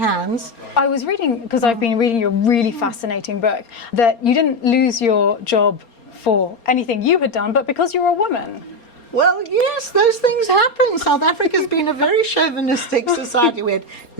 I was reading, because I've been reading your really fascinating book, that you didn't lose your job for anything you had done, but because you were a woman. Well, yes, those things happen. South Africa's been a very chauvinistic society. We had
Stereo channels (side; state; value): right; late; 4.3 ms